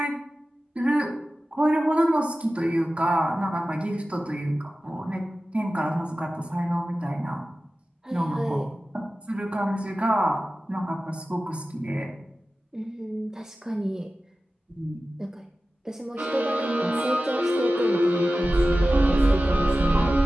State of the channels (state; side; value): normal; both; correlation 0.95